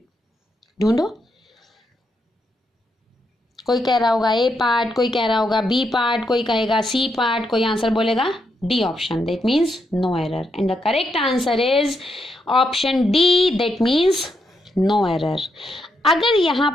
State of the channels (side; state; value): both; normal; correlation 0.81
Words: ढूंढो। कोई कह रहा होगा ए पार्ट, कोई कह रहा होगा बी पार्ट, कोई कहेगा सी पार्ट, कोई आंसर बोलेगा D option, that means no error. And the correct answer is option D, that means no error. अगर यहाँ